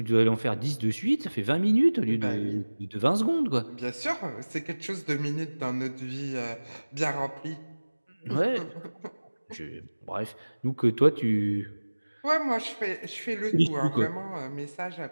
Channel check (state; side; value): inverted; both; correlation -1.00